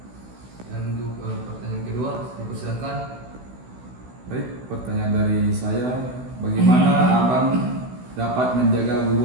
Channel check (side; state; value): left; late; 16 ms